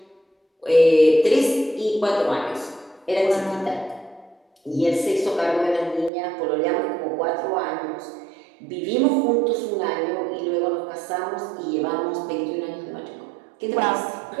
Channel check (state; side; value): drops out; left; at 6.1 s